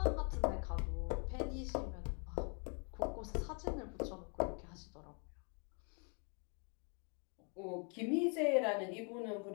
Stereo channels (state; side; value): quieter; right; 38.1 dB